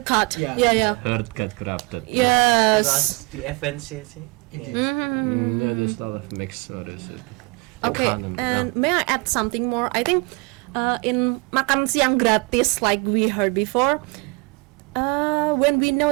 cut. Yeah. Yeah. Heard got corrupted. Yes. because the efficiency Indeed. Yeah, there's a lot of mixed. What is it? Okay, Economy, and may I add something more? I think in makan siang gratis, like we heard before, when we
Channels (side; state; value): left; quieter; 27.6 dB